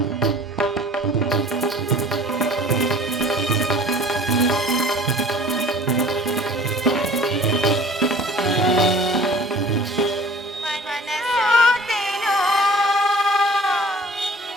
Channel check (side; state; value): both; normal; correlation 0.48